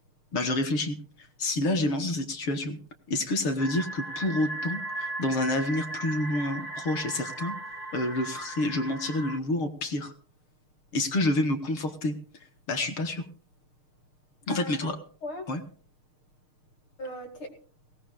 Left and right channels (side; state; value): right; late; 6.6 ms